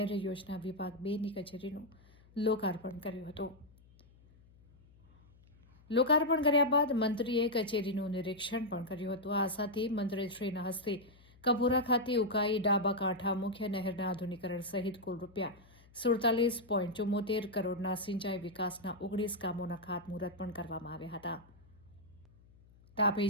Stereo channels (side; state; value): left; noise; hum, 27 dB below the sound